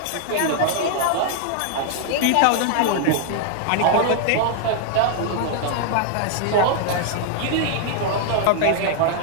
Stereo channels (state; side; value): different; both; correlation -0.01